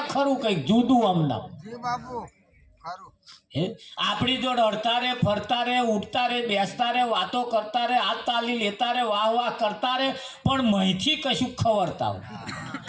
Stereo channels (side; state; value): both; identical; correlation 1.00